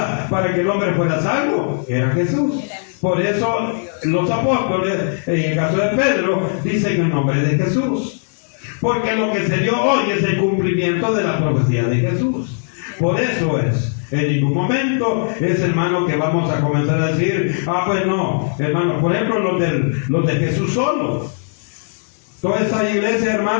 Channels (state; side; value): silent; right; digital silence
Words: para que el hombre fuera salvo? Era Jesús. Por eso los apóstoles, en el caso de Pedro, dicen el nombre de Jesús. Porque lo que se dio hoy es el cumplimiento de la profecía de Jesús. Por eso es. En ningún momento es, hermano, que vamos a comenzar a decir, pues no, hermano, por ejemplo, los de Jesús solo. Toda esta iglesia,